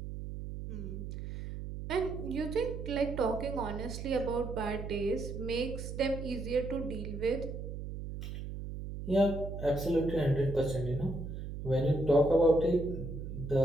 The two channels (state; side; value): noise; right; hum, 7 dB below the sound